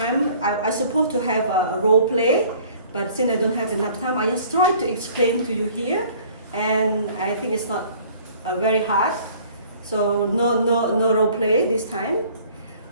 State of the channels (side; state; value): both; inverted; correlation -0.53